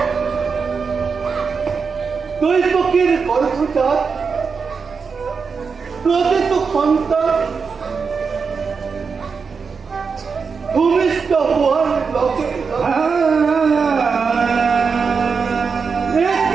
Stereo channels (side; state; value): left; quieter; 5.4 dB